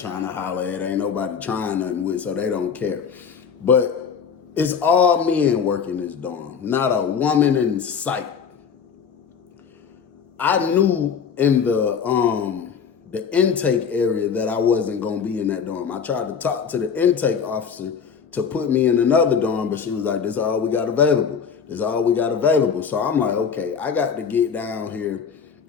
to holler at, ain't nobody trying nothing with, so they don't care. But it's all men working this dorm, not a woman in sight. I knew in the intake area that I wasn't going to be in that dorm. I tried to talk to the intake officer to put me in another dorm, but she was like, this is all we got available. This is all we got available. So I'm like, okay, I got to get down here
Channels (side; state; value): right; quieter; 6.6 dB